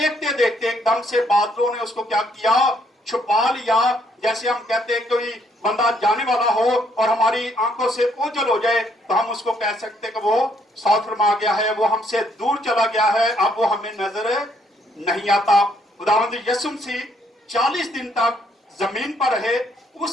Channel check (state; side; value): normal; both; correlation 0.69